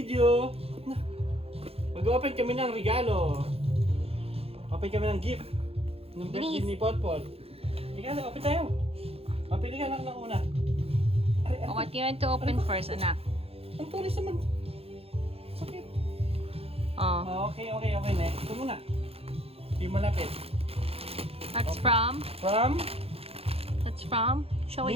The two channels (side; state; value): left; late; 0.28 ms